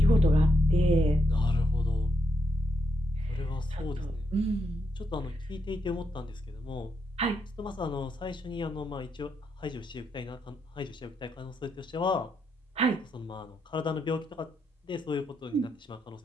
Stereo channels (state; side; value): normal; both; correlation 0.80